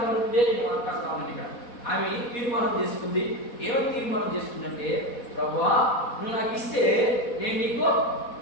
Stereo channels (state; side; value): late; right; 4.1 ms